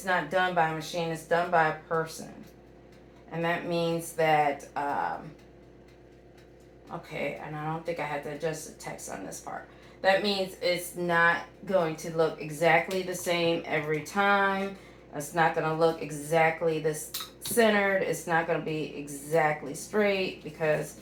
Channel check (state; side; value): identical; both; correlation 1.00